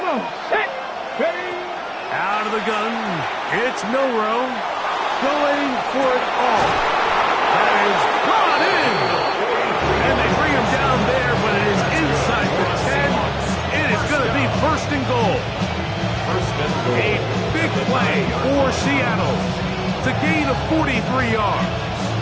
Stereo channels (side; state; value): both; identical; correlation 1.00